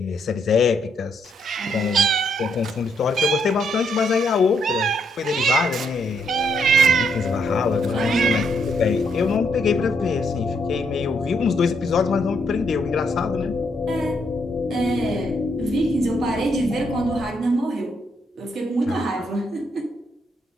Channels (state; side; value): normal; both; correlation 0.75